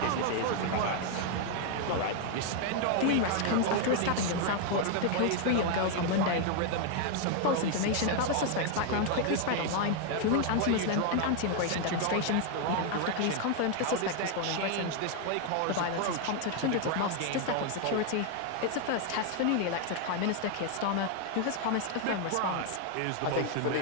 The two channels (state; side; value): different; both; correlation 0.00